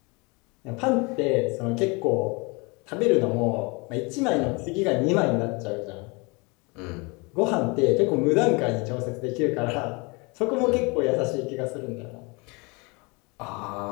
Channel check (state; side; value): quieter; right; 28.7 dB